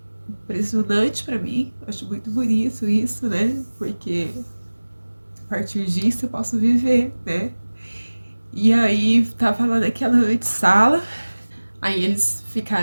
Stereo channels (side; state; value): both; inverted; correlation -1.00